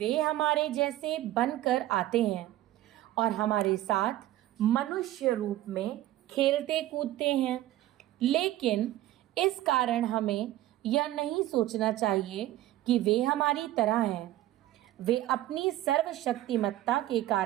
हमारे जैसे बनकर आते हैं और हमारे साथ मनुष्य रूप में खेलते कूदते हैं। लेकिन इस कारण हमें यह नहीं सोचना चाहिए कि वे हमारी तरह हैं। वे अपनी सर्वशक्तिमत्ता के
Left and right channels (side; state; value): left; quieter; 14.9 dB